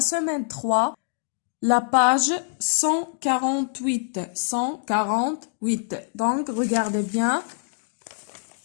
3, la page 148. 148. Donc regardez bien.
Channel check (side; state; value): right; silent; digital silence